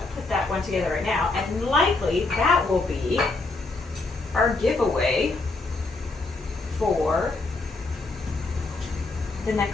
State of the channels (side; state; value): right; quieter; 3.4 dB